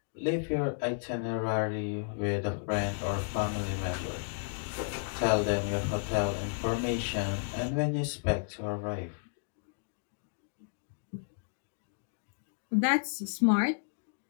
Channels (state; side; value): silent; right; digital silence